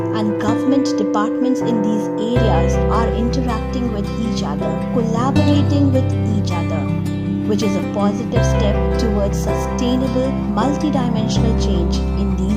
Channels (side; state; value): both; identical; correlation 1.00